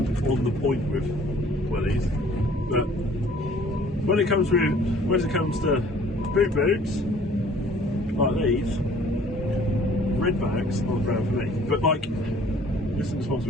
the point with wellies, but when it comes to boot boots like these, red bags aren't brown for me. But like, this is a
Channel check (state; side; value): normal; both; correlation 0.54